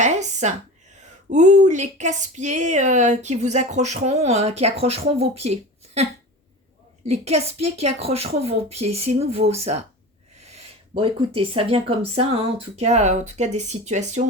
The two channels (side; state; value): both; normal; correlation 0.32